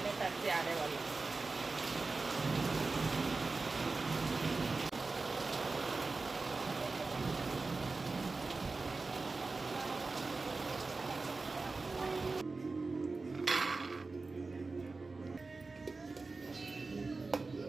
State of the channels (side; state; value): left; quieter; 3.8 dB